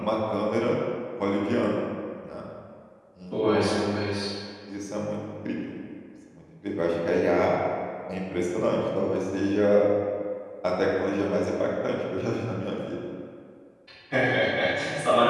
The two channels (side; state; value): both; identical; correlation 1.00